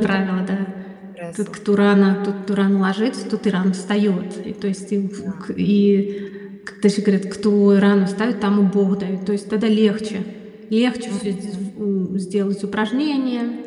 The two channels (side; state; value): both; identical; correlation 1.00